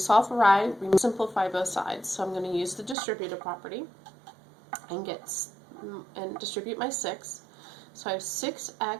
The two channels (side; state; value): left; drops out; at 3.0 s